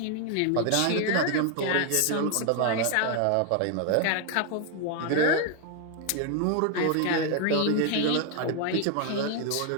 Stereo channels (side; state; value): both; different; correlation 0.01